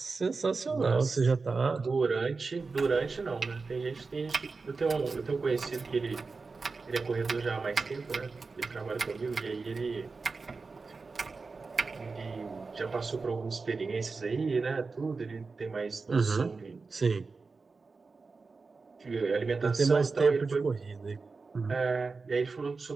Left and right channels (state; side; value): quieter; left; 4.3 dB